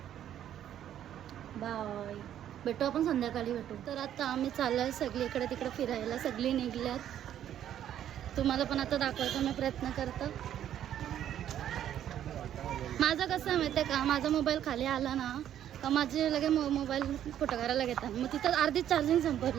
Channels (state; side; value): quieter; left; 10.7 dB